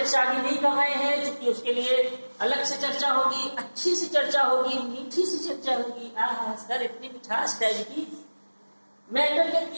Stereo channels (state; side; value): inverted; both; correlation -1.00